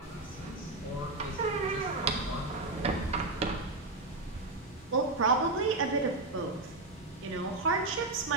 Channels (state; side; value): quieter; left; 3.2 dB